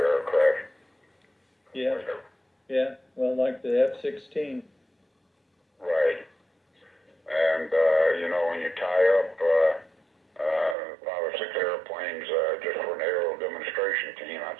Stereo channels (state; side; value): drops out; left; at 10.8 s